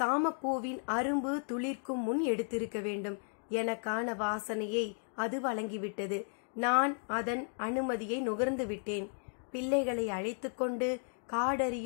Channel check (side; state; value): right; silent; 55 dB below the other